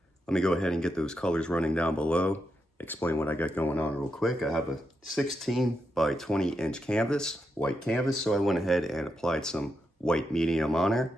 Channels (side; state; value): both; normal; correlation 0.85